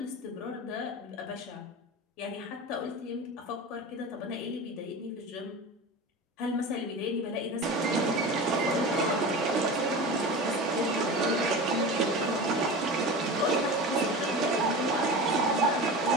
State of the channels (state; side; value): normal; both; correlation 0.31